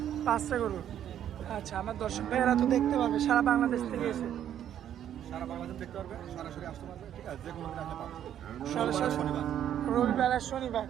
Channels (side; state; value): left; quieter; 10.4 dB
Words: 5টা গরু। আচ্ছা, আমার দর্শক ভাইয়েরা তো দেখতে পারবে, সারা বাংলাদেশ থেকে এসে সারা বাংলাদেশ দেখতে পারবে, সরাসরি আসতে পারবে, ঠিক আছে, যে কোনো দিন আসলে পাবে। সরাসরি শনিবার, রবিবার আর শনিবার,